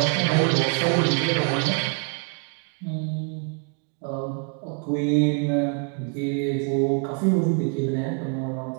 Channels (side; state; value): left; quieter; 39.6 dB